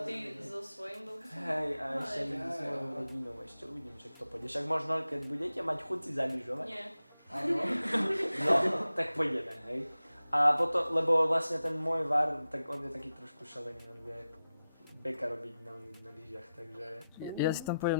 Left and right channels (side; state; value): both; inverted; correlation -0.93